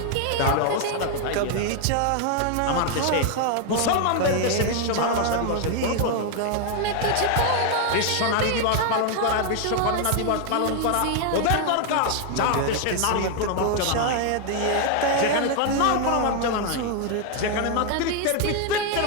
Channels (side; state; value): both; different; correlation 0.00